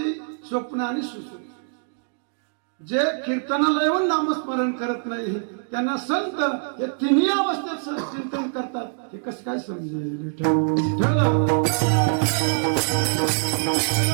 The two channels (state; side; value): silent; left; digital silence